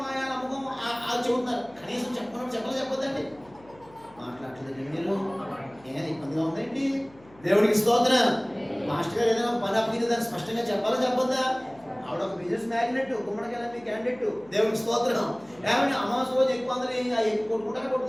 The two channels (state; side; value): noise; left; hum, 26 dB below the sound